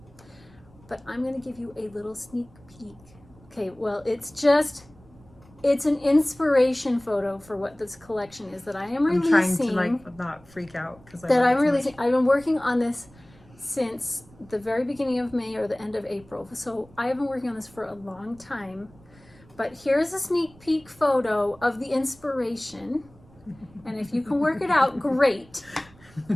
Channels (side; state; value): right; noise; rumble, 25 dB below the sound